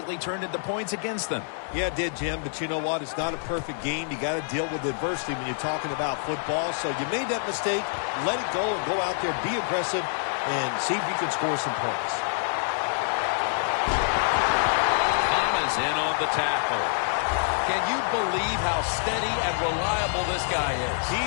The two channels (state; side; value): silent; right; 61 dB below the other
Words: turned into points against them. Yeah, it did, Jim, but you know what? It's not a perfect game. You got to deal with adversity when you're talking about football. So you made that mistake, let it go, and go out there, be aggressive, and see if you can score some points. Thomas in on the tackle. Can you believe how steady and reliable this guy is? He